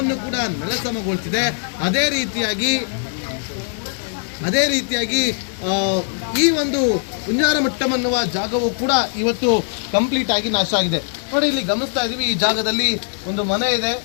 ಕೂಡ ನೆಲಸಮಗೊಳಿಸಿದೆ. ಅದೇ ರೀತಿಯಾಗಿ ಈ ಒಂದು ಕುಂಜಾರಮಟ್ಟಂ ಅನ್ನುವ ಜಾಗವು ಕೂಡ ಇವತ್ತು ಕಂಪ್ಲೀಟ್ ಆಗಿ ನಾಶ ಆಗಿದೆ. ನೋಡಿ, ಇಲ್ಲಿ ಗಮನಿಸ್ತಾ ಇದ್ದೀವಿ, ಈ ಜಾಗದಲ್ಲಿ ಒಂದು ಮನೆ ಇದೆ.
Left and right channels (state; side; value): silent; right; digital silence